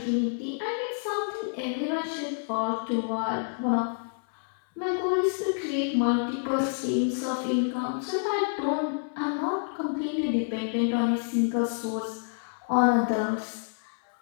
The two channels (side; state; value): right; silent; 59 dB below the other